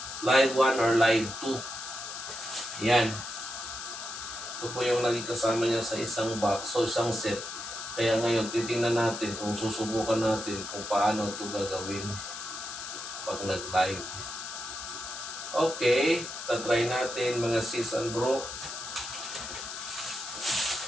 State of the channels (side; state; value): left; noise; hiss, 8 dB below the sound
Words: live 1 or live 2. Yan. Ito po yung lagi kasama niya sa isang box, so isang set. Kaya ngayon, titingnan natin kung susubukan natin kung paano ito gagawin pag nag-live. Okay, tatry natin mga sis and bro.